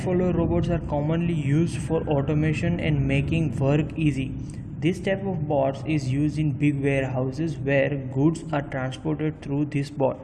robots are commonly used for automation and making work easy. This type of bots is used in big warehouses where goods are transported through this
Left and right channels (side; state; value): both; identical; correlation 1.00